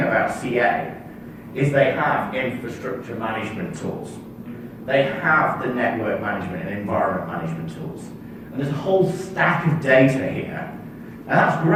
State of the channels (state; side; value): identical; both; correlation 1.00